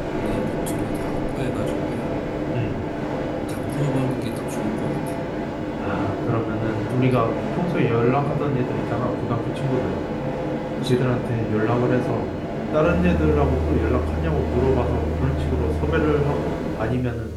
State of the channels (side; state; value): both; identical; correlation 1.00